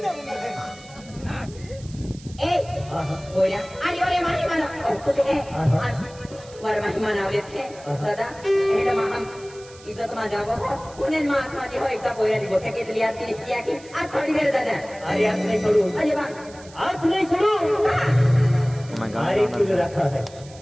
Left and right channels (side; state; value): right; noise; hiss, 22 dB below the sound